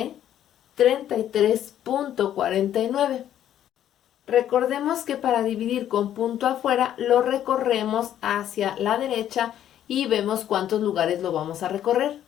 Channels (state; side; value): quieter; right; 11.0 dB